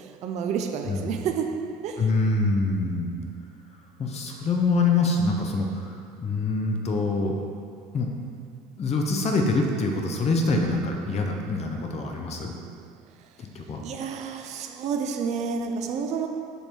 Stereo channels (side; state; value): both; normal; correlation 0.48